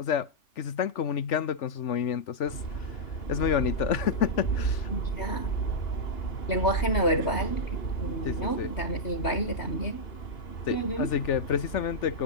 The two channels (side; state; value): right; late; 3.4 ms